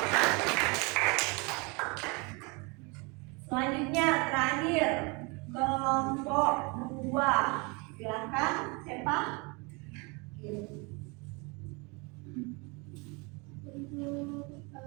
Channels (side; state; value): left; quieter; 29.3 dB